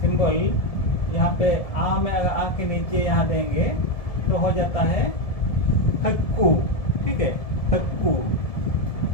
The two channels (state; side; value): late; right; 1.7 ms